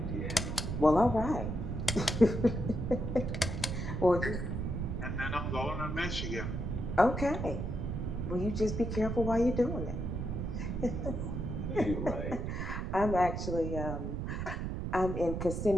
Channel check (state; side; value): noise; right; rumble, 3 dB below the sound